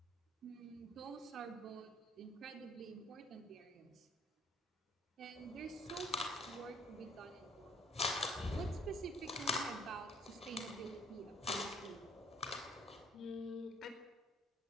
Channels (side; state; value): both; normal; correlation 0.60